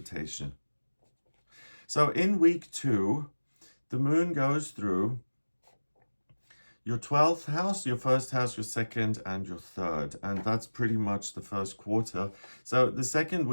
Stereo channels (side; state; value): both; inverted; correlation -1.00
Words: So in week 2, the moon goes through your 12th house, your first house, your second, and your third. And that's pretty much the first quarter. So the second